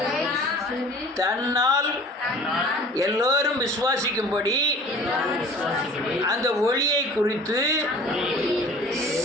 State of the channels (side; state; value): both; normal; correlation 0.45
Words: தன்னால் எல்லோரும் விசுவாசிக்கும்படி அந்த ஒளியை குறித்து